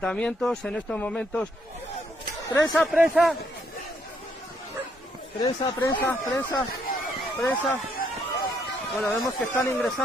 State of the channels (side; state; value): both; normal; correlation 0.72